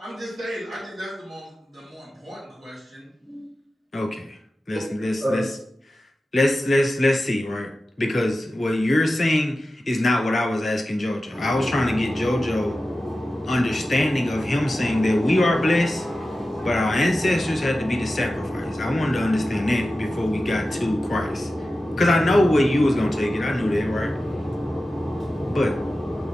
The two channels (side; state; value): both; normal; correlation 0.94